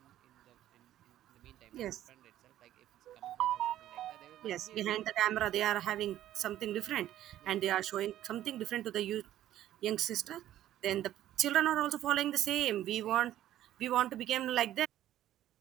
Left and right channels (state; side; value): quieter; left; 12.8 dB